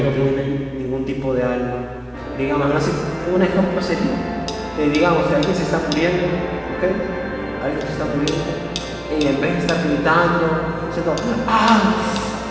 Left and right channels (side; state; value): both; identical; correlation 1.00